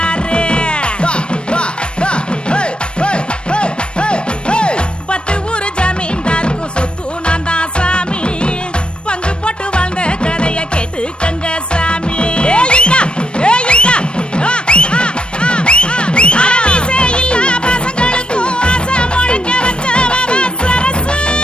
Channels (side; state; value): right; late; 0.056 ms